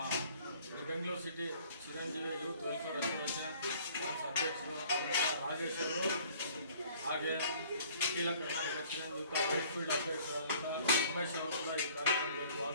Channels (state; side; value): inverted; both; correlation -0.55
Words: Bengaluru city Chiranjeevi youth welfare association ಅಧ್ಯಕ್ಷರು ರಾಜೇಶ್ ಅವರು, ಹಾಗೆ ಅಖಿಲ ಕರ್ನಾಟಕ ಚಿರಂಜೀವಿ ವೈಟ್ಫೀಲ್ಡ್ ಅಧ್ಯಕ್ಷರಾದಂಥ ಉಮೇಶ್ ಅವರು ಕೂಡ ಈ ಕಾರ್ಯಕ್ರಮದಲ್ಲಿ